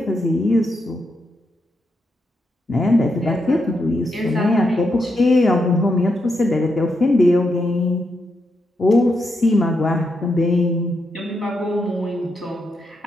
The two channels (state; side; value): normal; both; correlation 0.82